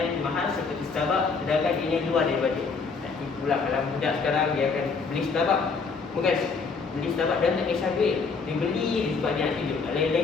mahal seperti Starbucks sedangkan ini luar dari bajet. Tak tipu lah kalau budak sekarang dia akan beli Starbucks. Bukan beli Starbucks dan tak kisah duit. Dia beli sebab dia nak tunjuk.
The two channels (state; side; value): quieter; right; 4.9 dB